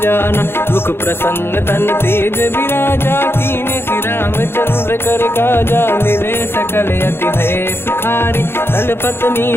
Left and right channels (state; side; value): late; right; 0.11 ms